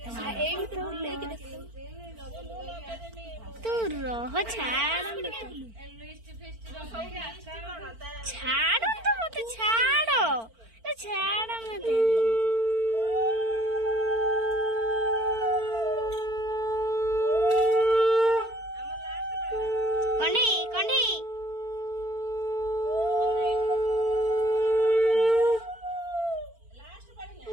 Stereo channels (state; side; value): late; left; 4.4 ms